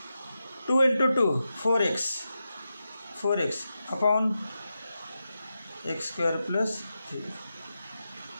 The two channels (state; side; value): inverted; both; correlation -0.90